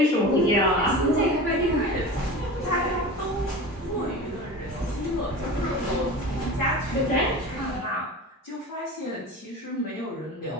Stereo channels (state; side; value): normal; both; correlation 0.33